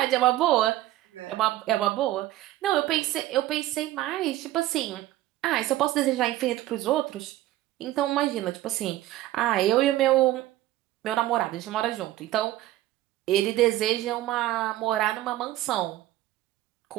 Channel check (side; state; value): left; quieter; 15.3 dB